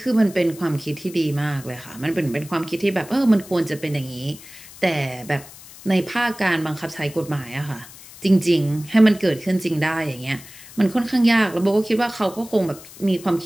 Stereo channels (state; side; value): noise; left; hiss, 18 dB below the sound